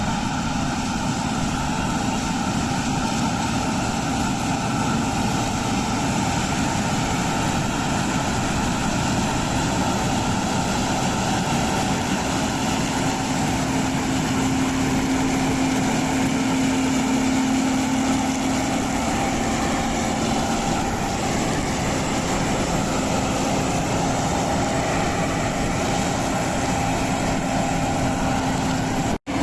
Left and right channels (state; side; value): identical; both; correlation 1.00